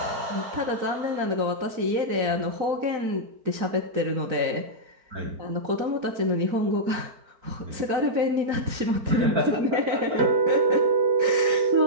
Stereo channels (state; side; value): late; left; 4.4 ms